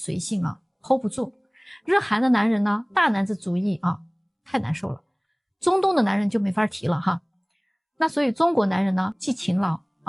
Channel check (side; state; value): both; identical; correlation 1.00